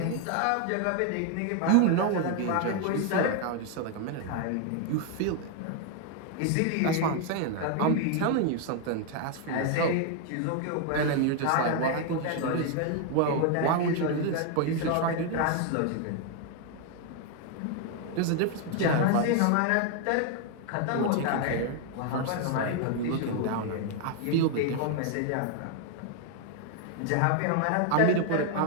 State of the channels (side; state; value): both; different; correlation 0.00